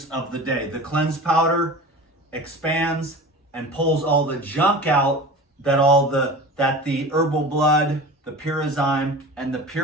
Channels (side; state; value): both; normal; correlation 0.35